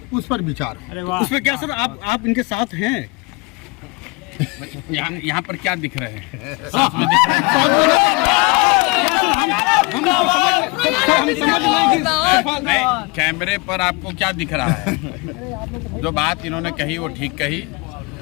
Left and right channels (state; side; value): quieter; right; 28.0 dB